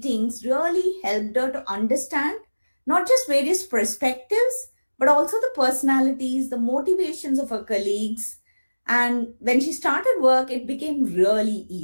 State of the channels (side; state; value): both; inverted; correlation -1.00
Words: really helped her to understand not just various perspectives, but also the personalities, the motivations of her colleagues. And when she started work, it became really